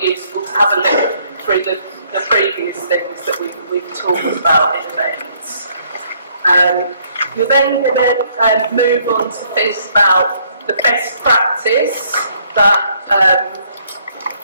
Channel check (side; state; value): both; inverted; correlation -0.66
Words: useful to have a look through the previous things that we've talked about in events. You're then going to move on to think about the best practice that